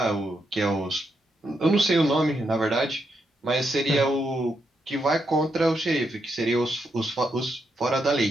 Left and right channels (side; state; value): both; normal; correlation 0.81